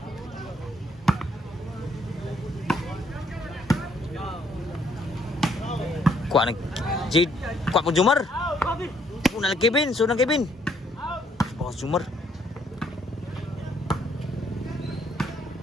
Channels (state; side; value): normal; both; correlation 0.68